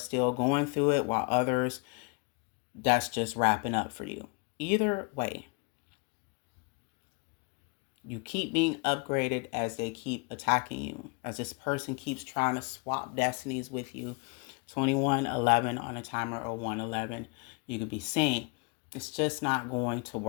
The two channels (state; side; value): quieter; right; 31.0 dB